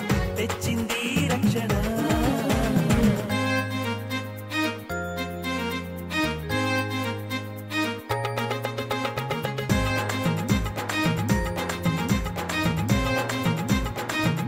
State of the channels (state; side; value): identical; both; correlation 1.00